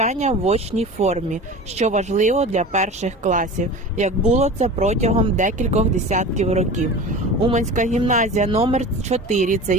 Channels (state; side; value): normal; both; correlation 0.34